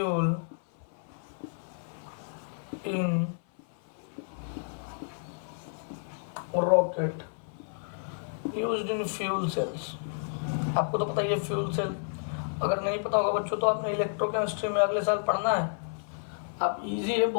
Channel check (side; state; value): right; silent; 57 dB below the other